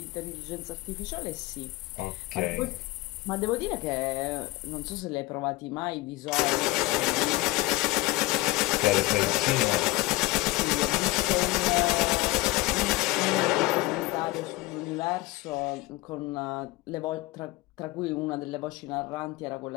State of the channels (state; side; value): quieter; right; 19.9 dB